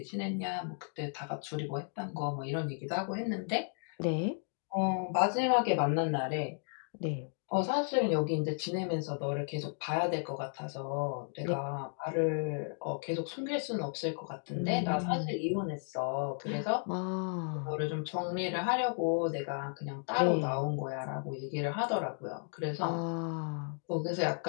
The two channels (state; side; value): silent; right; 55 dB below the other